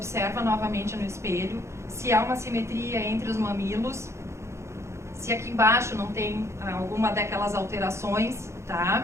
novamente no espelho se há uma simetria entre os mamilos, se aqui embaixo não tem alguma daquelas alterações,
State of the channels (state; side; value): late; left; 0.13 ms